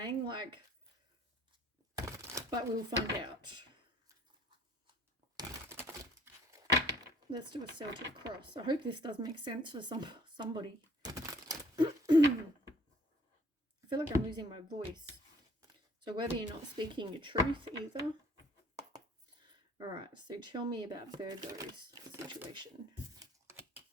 Like, but we'll find out. Let's do a Celtic cross. I hope this does make sense for somebody. I feel like I'm losing my voice. So whether you're not speaking your truth either. All right, so tell me about Virgo's situation.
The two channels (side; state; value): both; normal; correlation 0.58